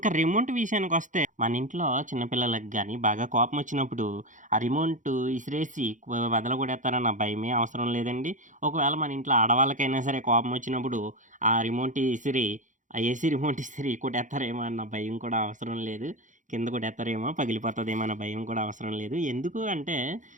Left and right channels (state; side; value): late; left; 0.37 ms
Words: రిమోట్ విషయానికొస్తే మన ఇంట్లో చిన్న పిల్లలకి గాని బాగా కోపమొచ్చినప్పుడు ఆ రిమోట్ ఇసిరేసి వదలగొడేత్తారన్న భయమే అవసరం లేదండి. ఒకవేళ మన ఇంట్లో ఆడవాళ్ళకైనా సరే కోపమొచ్చినప్పుడు ఆ రిమోట్ ఇసిరి ఆ ఏసీ రిమోట్ ఇసిరి కొట్టేత్తారేమో అన్న భయం కూడా అవసరం లేదు. కింద కొట్టేత్తారేమో, పగిలిపోతదేమో అన్న భయం కూడా అవసరం లేదు. ఎందుకు అంటే